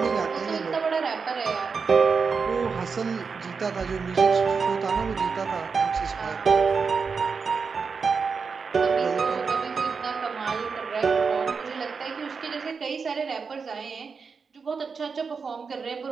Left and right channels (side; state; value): left; quieter; 5.3 dB